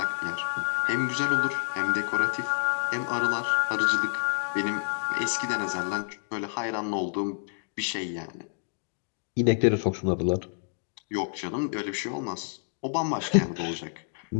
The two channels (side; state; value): right; silent; digital silence